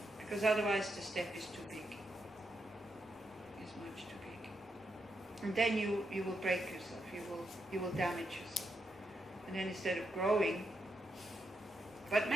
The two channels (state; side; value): normal; both; correlation 0.82